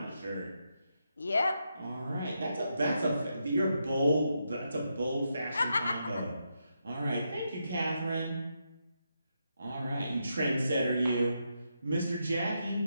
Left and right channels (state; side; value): inverted; both; correlation -0.83